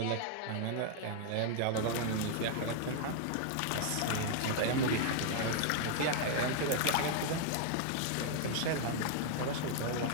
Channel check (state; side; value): different; both; correlation -0.01